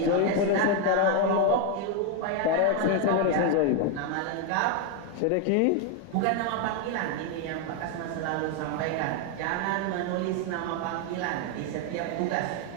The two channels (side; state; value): both; different; correlation 0.01